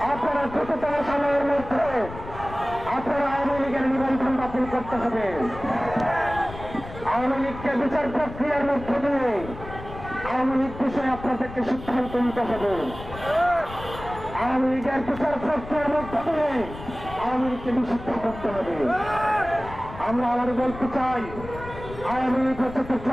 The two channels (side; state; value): left; noise; rumble, 13 dB below the sound